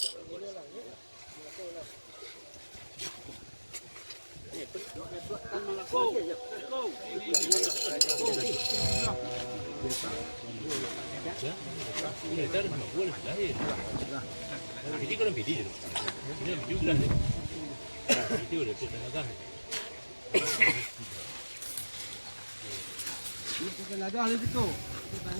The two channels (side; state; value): both; inverted; correlation -1.00